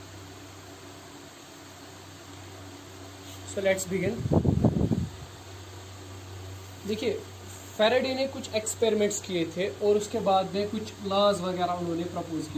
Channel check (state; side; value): identical; both; correlation 1.00